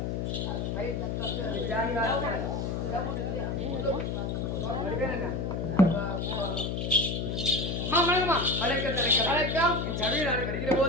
என் சபையில் நாடு வருகிற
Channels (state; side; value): noise; left; hum, 1 dB below the sound